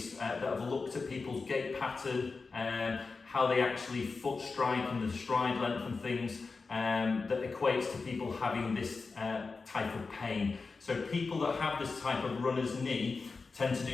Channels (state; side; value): quieter; right; 4.3 dB